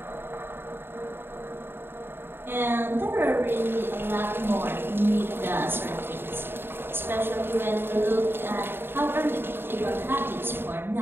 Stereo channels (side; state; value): left; late; 0.11 ms